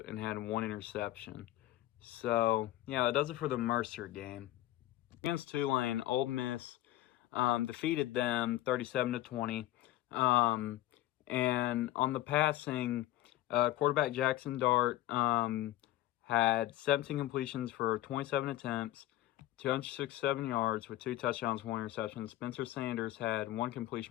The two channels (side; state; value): right; quieter; 14.9 dB